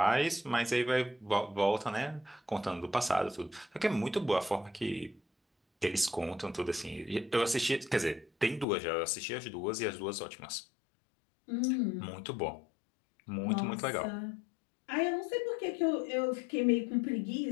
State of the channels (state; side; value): drops out; right; at 8.7 s